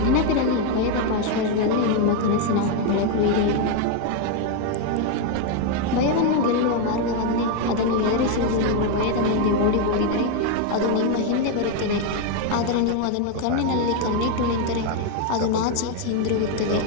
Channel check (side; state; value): both; different; correlation 0.01